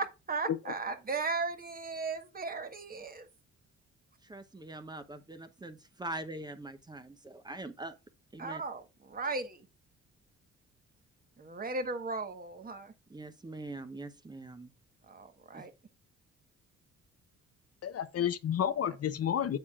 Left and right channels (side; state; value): both; normal; correlation -0.03